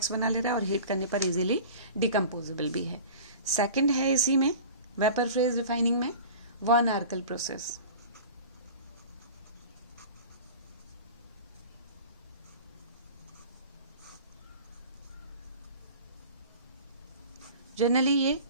बना ले रहा है और हीट करने पर इजीली डिकम्पोजेबल भी है. सेकंड है इसी में वेपर फेज रिफाइनिंग में वन आर्कल प्रोसेस. जनरली ये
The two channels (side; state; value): both; inverted; correlation -0.39